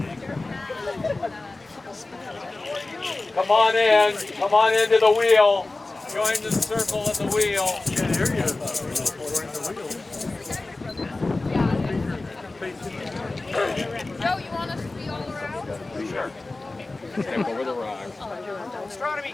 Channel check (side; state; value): right; quieter; 3.2 dB